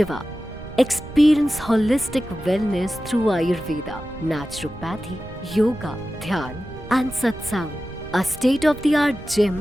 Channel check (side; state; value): right; noise; rumble, 15 dB below the sound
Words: Experience holistic wellness through Ayurveda, naturopathy, yoga, dhyan and satsang. A state-of-the-art gym,